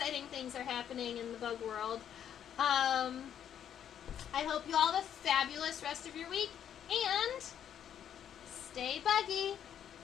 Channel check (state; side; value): quieter; right; 9.4 dB